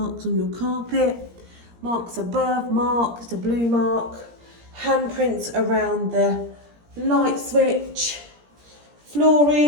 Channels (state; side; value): late; left; 17 ms